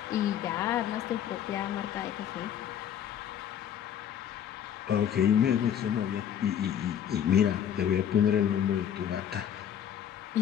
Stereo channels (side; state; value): right; quieter; 9.5 dB